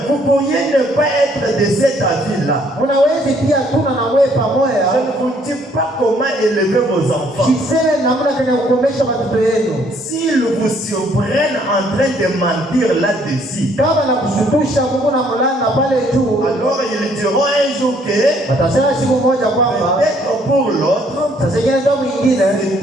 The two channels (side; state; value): both; normal; correlation 0.64